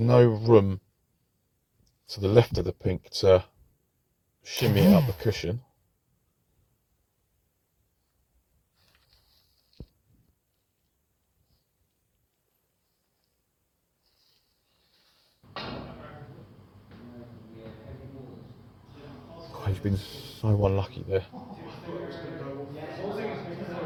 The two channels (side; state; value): both; identical; correlation 1.00